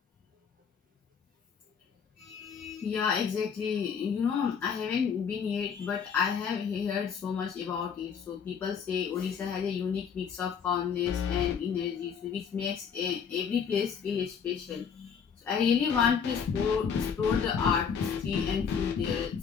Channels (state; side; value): quieter; right; 6.8 dB